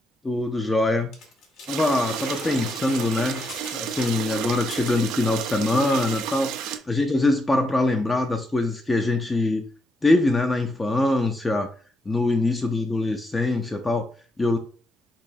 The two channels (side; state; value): both; normal; correlation 0.80